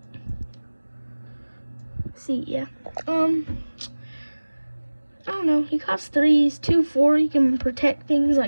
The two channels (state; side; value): inverted; both; correlation -1.00